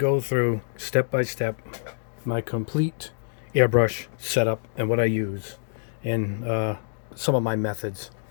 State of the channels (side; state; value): right; silent; digital silence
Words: through step by step my complete airbrush setup and what I use and some of my methods.